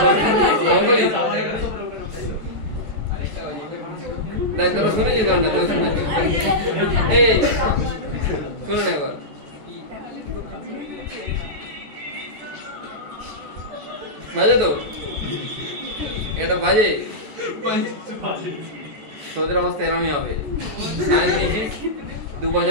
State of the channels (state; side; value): late; left; 14 ms